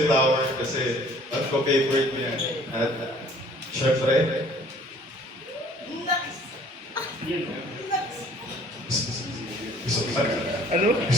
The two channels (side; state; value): both; normal; correlation 0.55